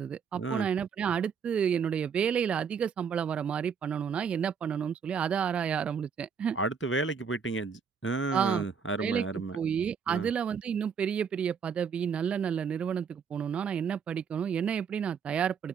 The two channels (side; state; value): left; quieter; 6.6 dB